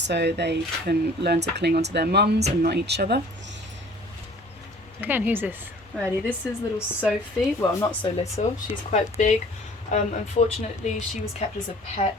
so they can learn to cling onto their mums and not each other. Okay, and who's this? Alrighty, this is little Sophie. Well, not so little. She's quite big. Unfortunately, she was kept as a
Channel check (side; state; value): both; normal; correlation 0.50